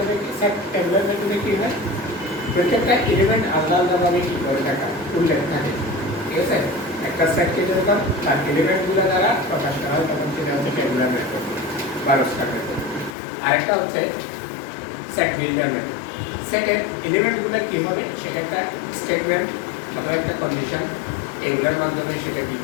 কি, সেট ট্যাবুলার মেথডে কি হয়, প্রত্যেকটা এলিমেন্ট আলাদা আলাদাভাবে কি করে থাকে, উল্লেখ থাকে। ঠিক আছে, একটা সেটকে যখন তার এলিমেন্টগুলো দ্বারা প্রকাশ করা হয় তখন সেটা হচ্ছে ট্যাবুলার মেথড বা রোস্টার মেথড। আরেকটা হচ্ছে সেট বিল্ডার মেথড। সেটের এলিমেন্টগুলো কি হবে, সেটা একটা স্টেটমেন্ট অথবা একটা কন্ডিশন, এগুলোর মাধ্যমে সেটা কি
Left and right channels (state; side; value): drops out; right; at 13.2 s